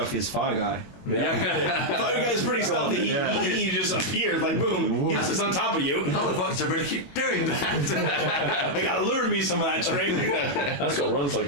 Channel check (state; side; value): late; right; 21 ms